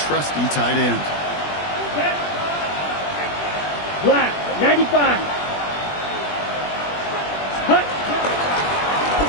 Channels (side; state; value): right; late; 20 ms